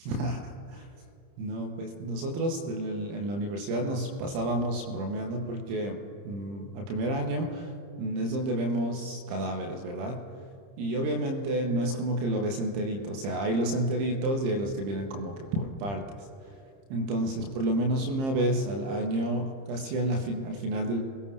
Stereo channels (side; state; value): left; late; 30 ms